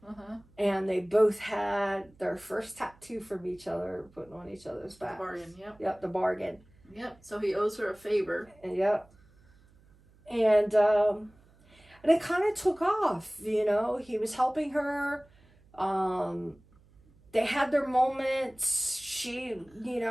And they both had their first tattoo from each other, putting on each other's back. The bargain, yep. Yep, the bargain. Yep, so he owes her a favor. Yep. And it kind of took off, He was helping her. They had their moments. She,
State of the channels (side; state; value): right; noise; hum, 29 dB below the sound